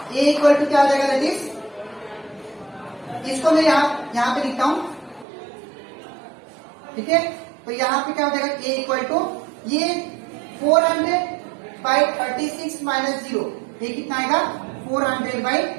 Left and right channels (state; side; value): drops out; left; at 5.2 s